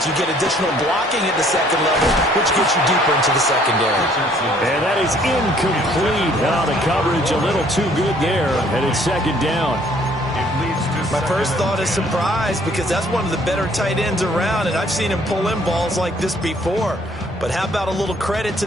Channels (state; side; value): normal; both; correlation 0.60